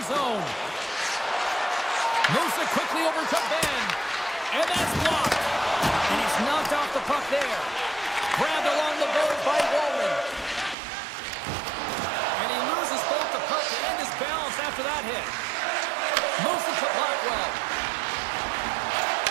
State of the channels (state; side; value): drops out; left; at 10.8 s